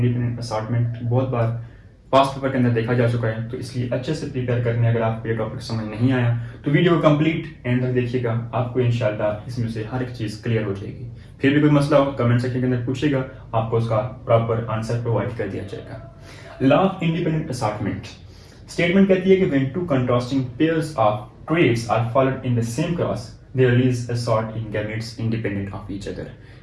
असॉर्टमेंट। बहुत बार पास्ट पेपर के अंदर देखा जा चुका है, तो इसलिए अच्छे से प्रिपेयर करने अगर आपको ये टॉपिक समझ नहीं आया तो वीडियो को कंप्लीट एंड तक देखिएगा, आपको इंशाल्लाह इसमें से हर एक चीज़ क्लियर हो जाएगी। फिर भी कोई मसला हो कमेंट सेक्शन के अंदर पूछेगा, आपको उसका प्रॉपर आंसर प्रोवाइड कर दिया जाएगा। Law of independent assortment statement कहती है कि when two contrasting pairs of traits are followed in the same cross they release assort in gametes independent of each other.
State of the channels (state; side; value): identical; both; correlation 1.00